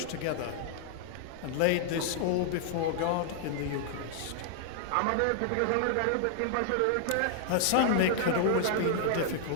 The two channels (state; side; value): different; both; correlation 0.00